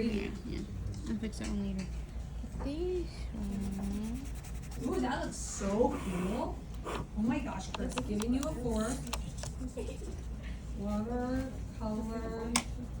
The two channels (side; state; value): both; identical; correlation 1.00